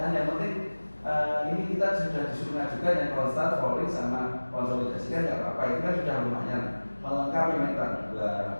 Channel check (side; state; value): both; inverted; correlation -1.00